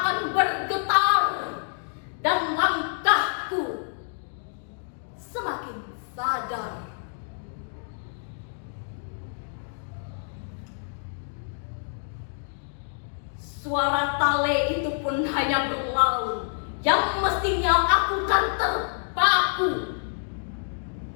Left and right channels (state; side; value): silent; right; digital silence